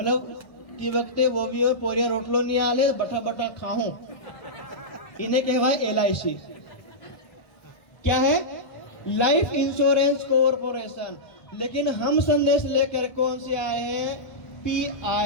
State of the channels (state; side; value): late; right; 1.2 ms